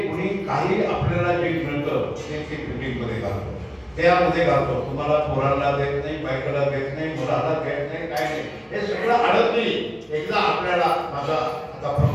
कुणी काही आपल्याला जे मिळतं ते बिल्डिंगमध्ये घालतो, त्यामध्ये घालतो. तुम्हाला पोरांना देत नाही, बायकाला देत नाही, मुलाला देत नाही, काय नाही. हे सगळं आडत नाही. एकदा आपल्याला माझा आता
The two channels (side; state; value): both; identical; correlation 1.00